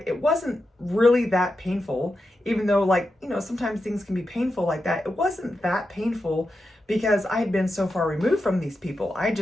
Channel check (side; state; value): both; normal; correlation 0.89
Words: It wasn't really that painful, even though sometimes things can be painful like that. It wasn't that painful, because I had been so far removed from these people. I